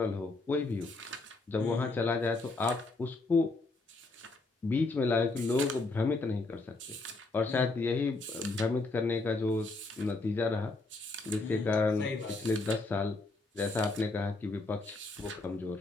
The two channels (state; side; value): quieter; right; 3.4 dB